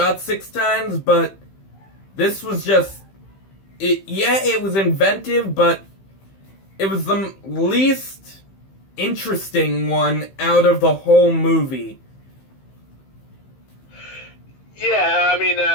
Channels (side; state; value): right; late; 15 ms